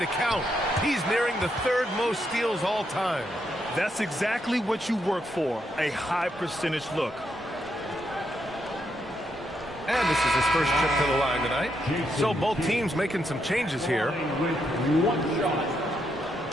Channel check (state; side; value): normal; both; correlation 0.79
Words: count. He's nearing the 3rd most steals all time. That's exactly what you work for, a high percentage look. And this is his first trip to the line tonight. So both teams making some changes here. With 1 shot.